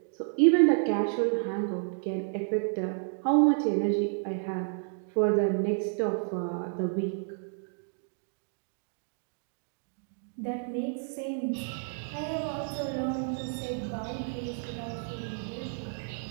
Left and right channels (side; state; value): left; silent; digital silence